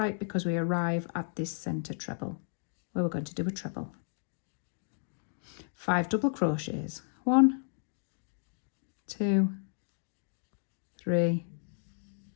because we arrive at this center treble where we're going to do a treble. 5 double crochets. 1, 2, 3,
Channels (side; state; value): right; silent; digital silence